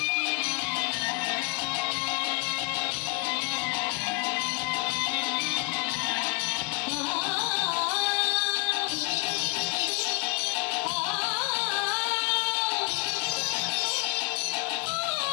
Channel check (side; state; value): right; quieter; 30.8 dB